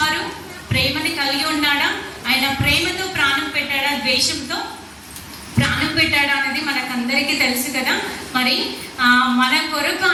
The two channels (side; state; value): both; identical; correlation 1.00